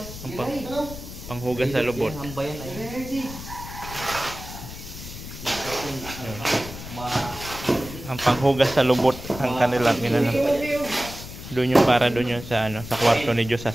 Panghugas sa lubot. Hamba yan ay. Ang panghugas sa lubot ang kanilang inano. Doon yung para doon yung sa sa kwarto ni Diyos sa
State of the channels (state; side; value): noise; left; rumble, 12 dB below the sound